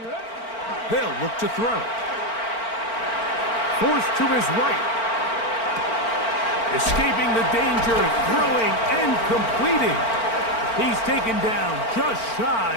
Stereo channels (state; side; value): late; right; 4.4 ms